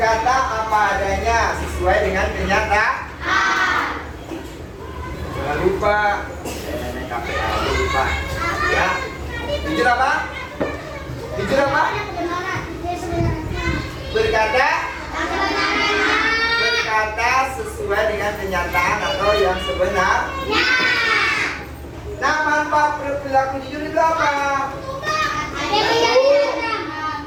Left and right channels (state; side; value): identical; both; correlation 1.00